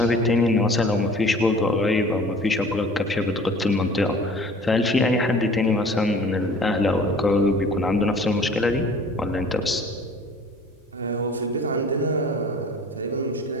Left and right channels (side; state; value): both; normal; correlation 0.47